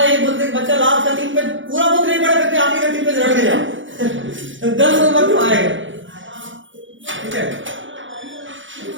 एक बोलते बच्चा लास्ट का 3 पेज पूरा बुक नहीं पढ़ा करके आखिरी का 3 पेज रट गया 10 नंबर तो आएगा, ठीक है।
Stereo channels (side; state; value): left; late; 0.56 ms